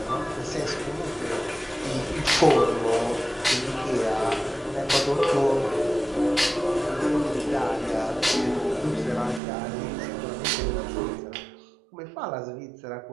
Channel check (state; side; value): drops out; left; at 9.4 s